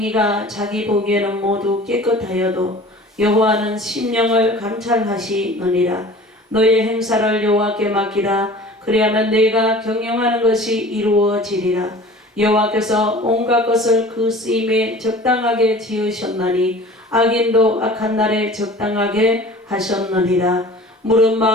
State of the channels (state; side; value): normal; both; correlation 0.43